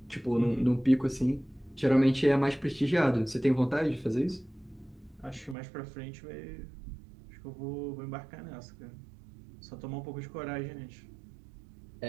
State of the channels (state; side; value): drops out; left; at 5.6 s